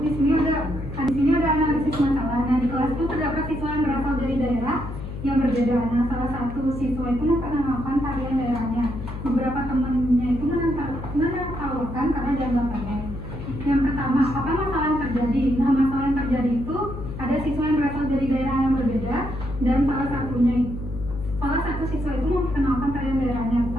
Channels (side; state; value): left; noise; hum, 9 dB below the sound